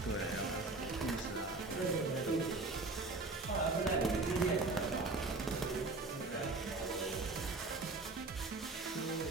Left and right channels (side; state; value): left; quieter; 3.4 dB